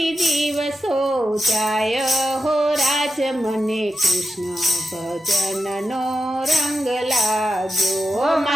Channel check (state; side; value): normal; both; correlation 0.89